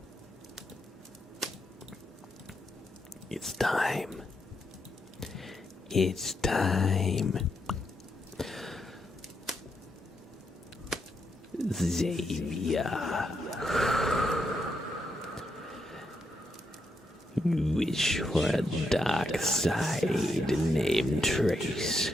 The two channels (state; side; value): normal; both; correlation 0.81